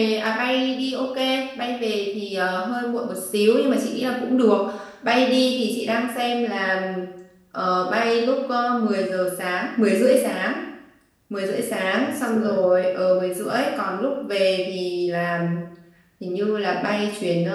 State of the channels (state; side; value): identical; both; correlation 1.00